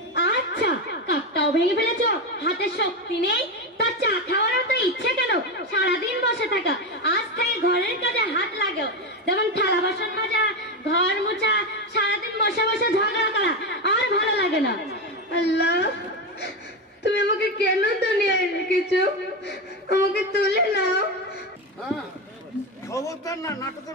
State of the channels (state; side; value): normal; both; correlation 0.14